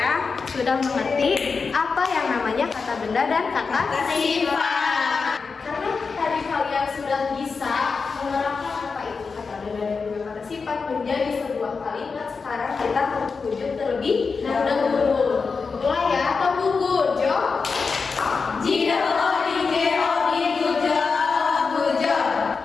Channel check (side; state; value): right; quieter; 4.9 dB